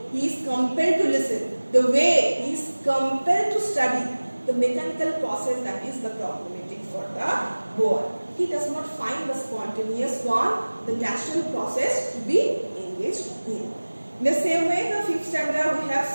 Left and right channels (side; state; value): both; inverted; correlation -1.00